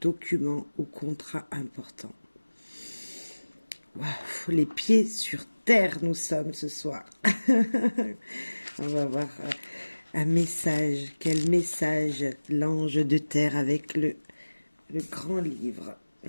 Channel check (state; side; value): inverted; both; correlation -1.00